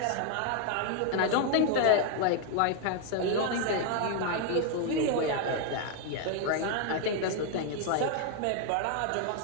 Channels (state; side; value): different; both; correlation 0.00